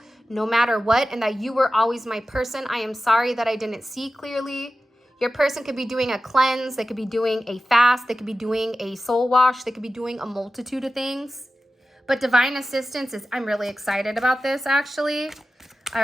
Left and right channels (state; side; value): normal; both; correlation 0.94